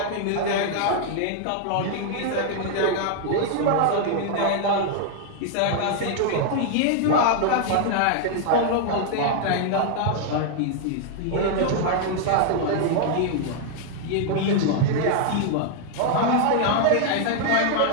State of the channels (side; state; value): both; different; correlation 0.00